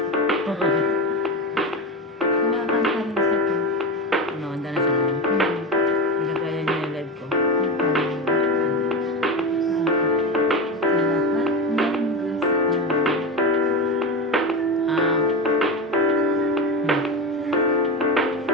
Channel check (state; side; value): normal; both; correlation 0.21